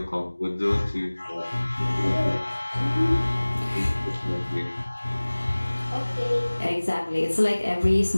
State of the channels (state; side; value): inverted; both; correlation -1.00